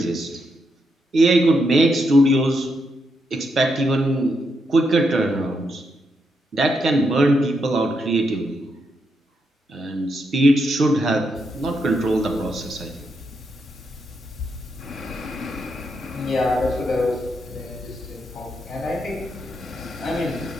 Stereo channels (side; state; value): both; normal; correlation 0.81